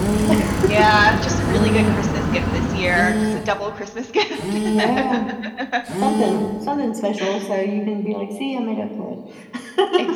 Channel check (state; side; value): identical; both; correlation 1.00